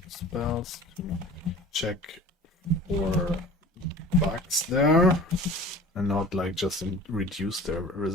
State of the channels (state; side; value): normal; both; correlation 0.43